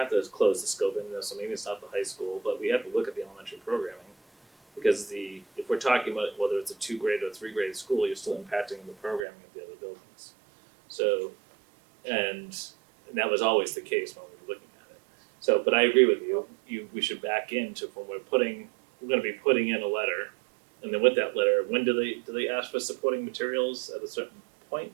to close the scope in this, so maybe it's not the high school, but we have to look at the elementary programming. Because if we're talking about whether it's a 2-grade or 3-grade school, you're still impacting the programming of the other buildings. So, and that was always the case when we were looking at it. So, but I agree with you, we should back into when we're gonna be putting in a letter. And then with that letter, when do they ask for supporting materials at a certain point,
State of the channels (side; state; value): left; drops out; at 9.2 s